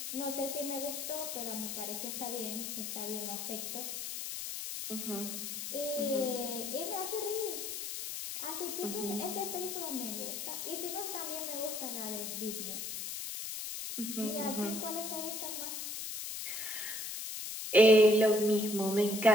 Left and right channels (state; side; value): noise; left; hiss, 5 dB below the sound